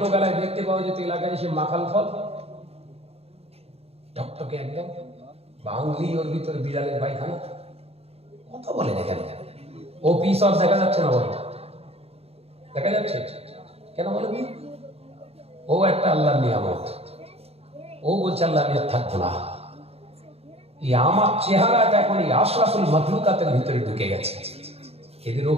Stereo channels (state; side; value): late; left; 0.29 ms